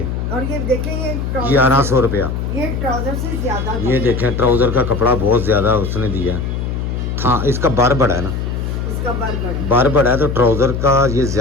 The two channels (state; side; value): noise; left; hum, 3 dB below the sound